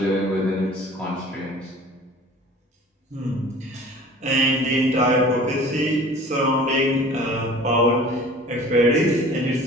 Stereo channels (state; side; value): normal; both; correlation 0.45